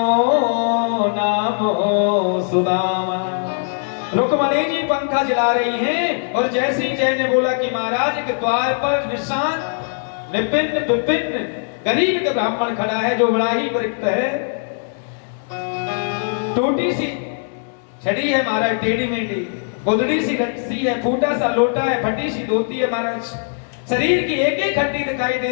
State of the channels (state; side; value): silent; right; digital silence